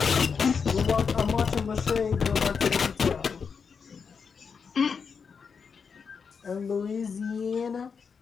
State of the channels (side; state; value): right; quieter; 5.9 dB